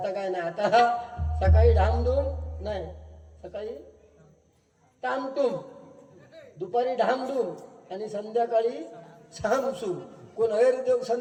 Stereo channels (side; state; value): both; identical; correlation 1.00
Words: काय नाही. आता सकाळी ढामढूम नाही, सकाळी टामटूम, दुपारी ढामढूम आणि संध्याकाळी सामसूम. कोण देव